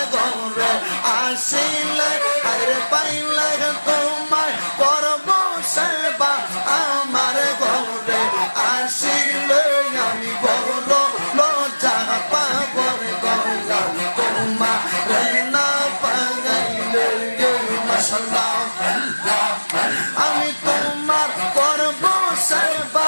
ঘরে আসিলে আরে পাইলে তোমায় করব সেবা আমার ঘরে আসিলে আমি বড় লজ্জা পাব রে দয়াল তোমার না পাইলে মাশাআল্লাহ আমি তোমার করব সেবা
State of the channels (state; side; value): inverted; both; correlation -1.00